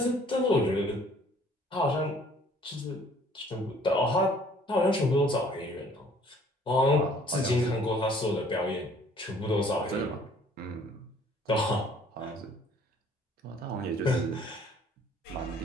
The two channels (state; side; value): normal; both; correlation 0.57